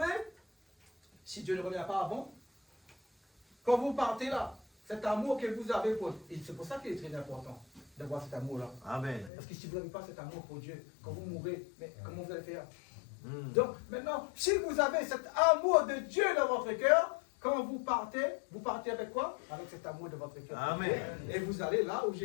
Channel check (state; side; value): drops out; right; at 9.3 s